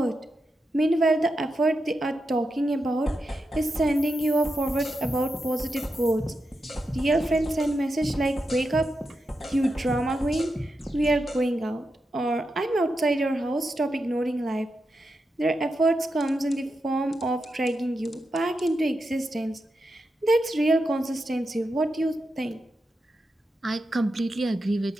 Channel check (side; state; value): both; normal; correlation 0.87